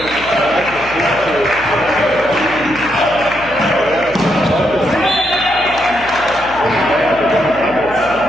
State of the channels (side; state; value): left; noise; hum, 17 dB below the sound